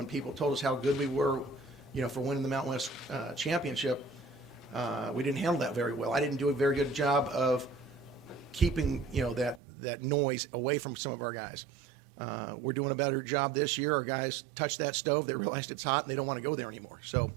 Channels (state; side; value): drops out; left; at 9.6 s